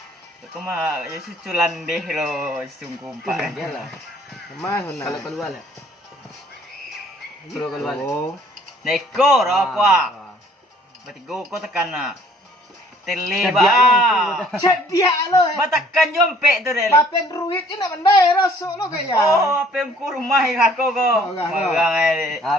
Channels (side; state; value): both; normal; correlation 0.58